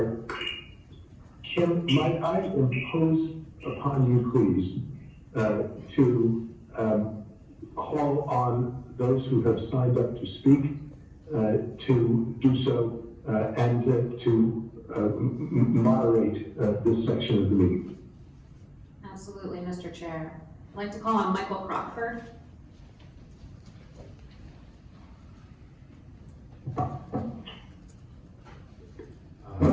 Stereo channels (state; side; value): identical; both; correlation 1.00